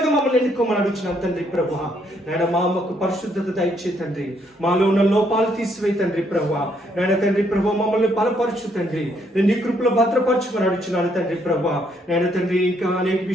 మమ్మల్ని ఎన్నుకోమని అడుగుతున్నాను తండ్రి ప్రభా. నేను మాకు పరిశుద్ధత దయచే తండ్రి, మాలో ఉన్న లోపాలు తీసివే తండ్రి ప్రభా. నేను తండ్రి ప్రభా, మమ్మల్ని బలపరచు తండ్రి. నేను నీ కృపలో భద్రపరచుమని అడుగుతున్నాను తండ్రి ప్రభా. నేను తండ్రి, ఇంకా అనేక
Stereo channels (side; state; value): both; normal; correlation 0.71